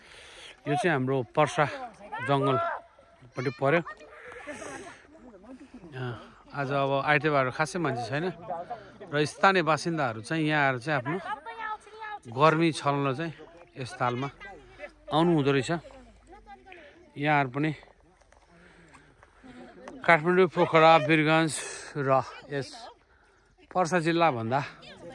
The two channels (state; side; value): identical; both; correlation 1.00